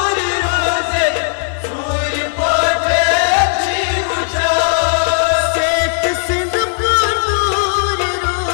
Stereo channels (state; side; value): silent; right; 69 dB below the other